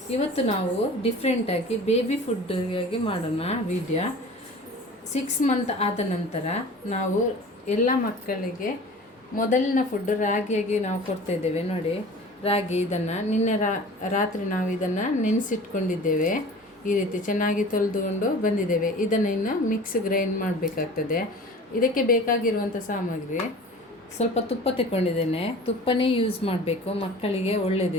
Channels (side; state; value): both; normal; correlation 0.41